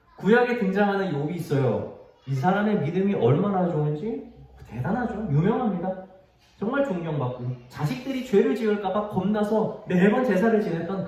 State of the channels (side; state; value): both; identical; correlation 1.00